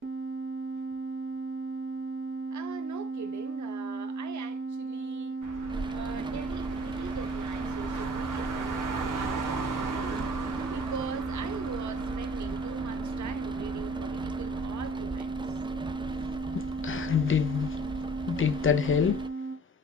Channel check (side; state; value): both; normal; correlation 0.52